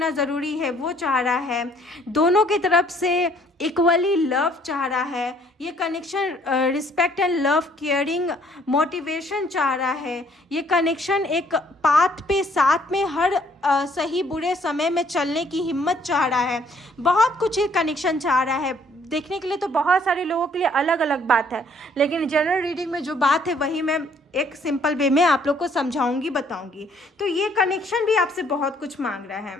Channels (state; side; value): normal; both; correlation 0.62